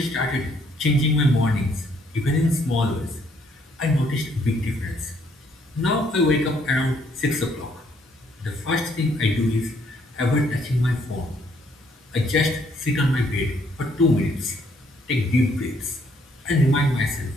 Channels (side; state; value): both; normal; correlation 0.68